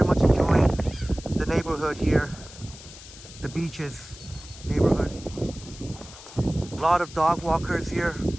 much enjoying the neighborhood here, the beaches neighborhood. A lot of dog walkers here.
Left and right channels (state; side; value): noise; left; hiss, 17 dB below the sound